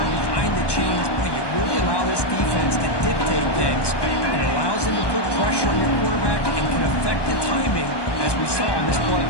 behind the chains, boy, you really allow this defense to dictate things. It allows them to put pressure on your quarterback and can affect the timing, as we saw on this play.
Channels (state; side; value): late; right; 1.2 ms